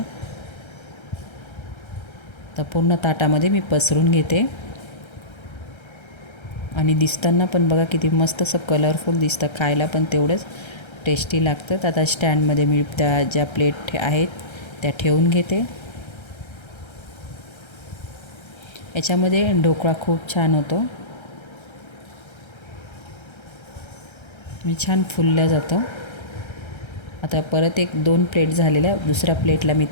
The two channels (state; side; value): late; right; 1.3 ms